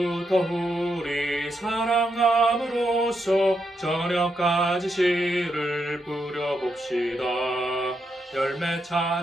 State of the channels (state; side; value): normal; both; correlation 0.82